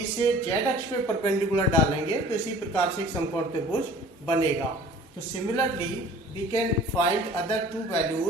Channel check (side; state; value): both; normal; correlation 0.47